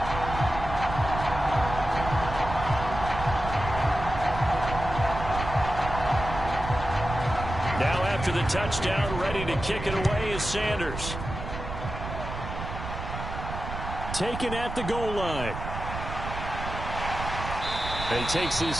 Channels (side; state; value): right; noise; rumble, 7 dB below the sound